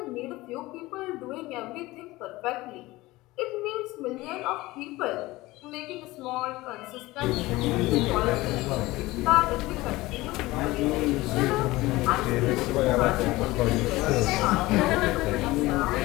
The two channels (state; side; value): quieter; right; 19.5 dB